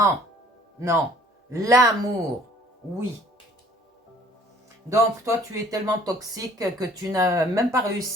non. L'amour, oui. Donc, toi, tu es tellement toxique que tu n'as même pas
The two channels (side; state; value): both; normal; correlation 0.55